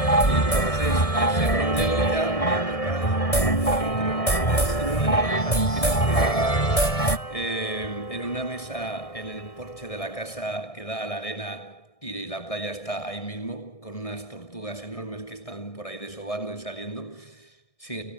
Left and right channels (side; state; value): right; late; 1.6 ms